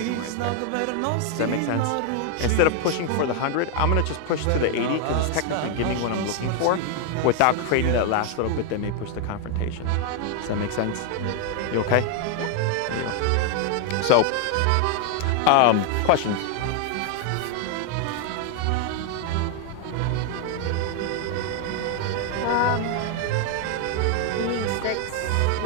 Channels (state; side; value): different; both; correlation 0.01